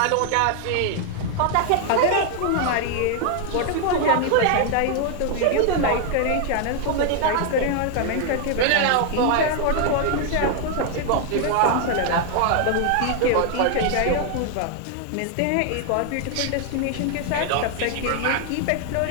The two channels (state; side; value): different; both; correlation 0.00